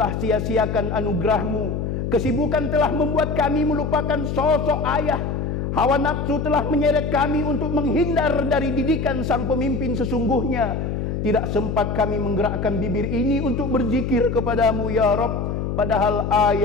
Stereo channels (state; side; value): noise; left; hum, 2 dB below the sound